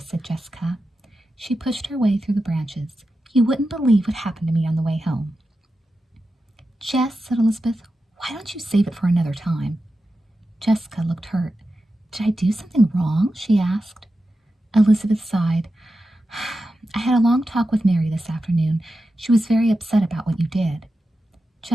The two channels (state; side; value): normal; both; correlation 0.91